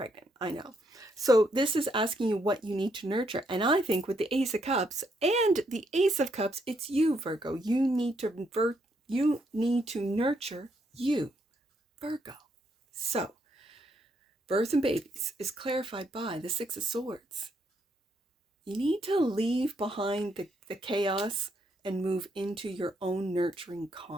I know. So this is asking you what you need to nurture. And I think with the Ace of Cups and the Ace of Cups, it's you, Virgo. You need to nurture you, Virgo. So, birth and babies is clarified by the 6 of Swords. You need to leave behind the chaos and move into your own nurturing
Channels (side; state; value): both; normal; correlation 0.75